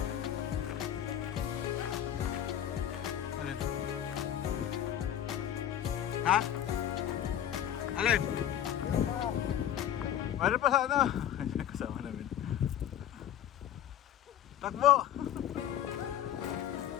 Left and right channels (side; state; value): right; quieter; 10.8 dB